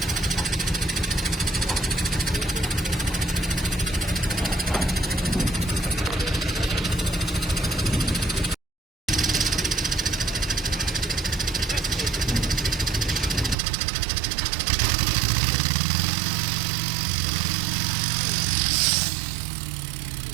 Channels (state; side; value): drops out; left; at 13.6 s